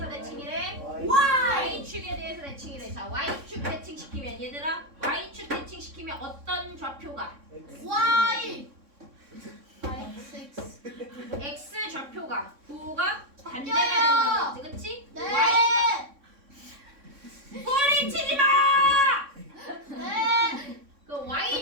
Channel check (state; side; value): late; left; 3.6 ms